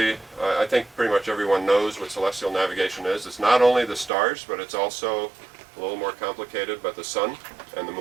I think pretty much everyone knows what celestial navigation is. It's not only the stars, but it's also a little more complicated, but the sun and the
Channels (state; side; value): drops out; left; at 4.1 s